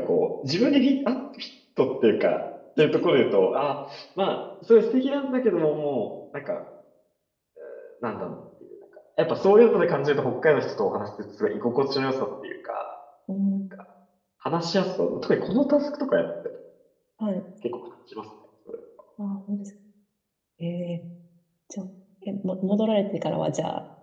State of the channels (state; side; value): identical; both; correlation 1.00